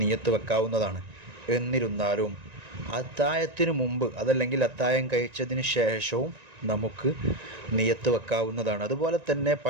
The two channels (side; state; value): left; late; 1.9 ms